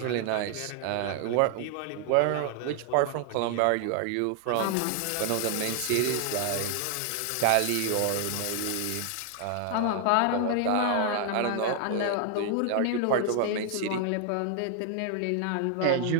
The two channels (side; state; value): both; different; correlation 0.00